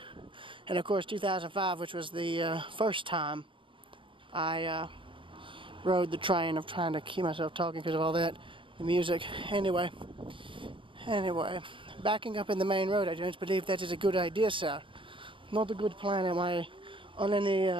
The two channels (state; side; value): late; left; 0.25 ms